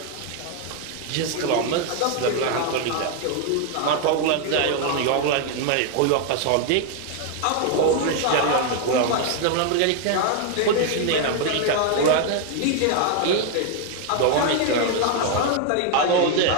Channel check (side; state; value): both; different; correlation 0.00